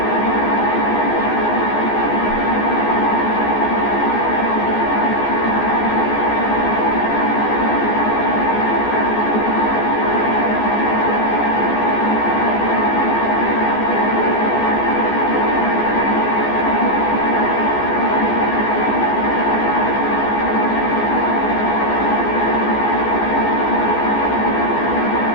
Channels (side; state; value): right; late; 14 ms